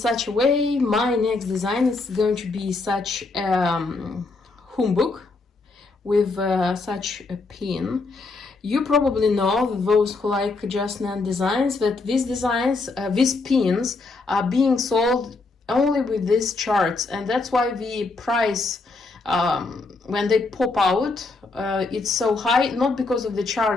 a way, my next design is going to be such a humbug with such a pin. You probably know, those who like Just Nan designs, that these designs, these pins are being sold only with these charts, and that's why the price when they pop out it's so high, not because of the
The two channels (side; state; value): right; quieter; 3.7 dB